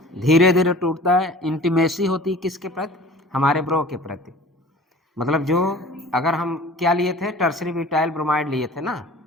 धीरे धीरे टूटता है। इंटीमेसी होती है किसके प्रति, हमारे ब्रो के प्रति। मतलब जो अगर हम क्या लिए थे, टर्सरी ब्यूटाइल ब्रोमाइड लिए थे ना,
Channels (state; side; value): normal; both; correlation 0.44